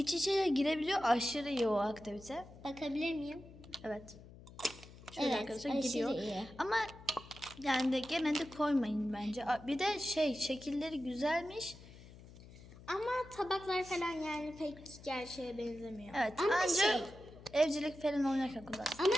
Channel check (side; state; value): left; noise; hum, 18 dB below the sound